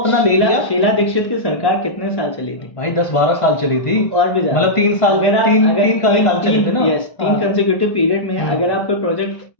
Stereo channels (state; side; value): late; right; 1.5 ms